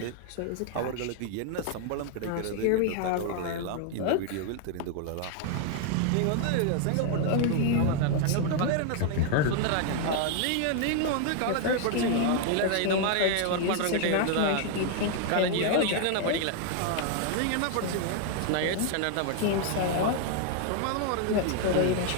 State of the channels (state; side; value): different; both; correlation 0.00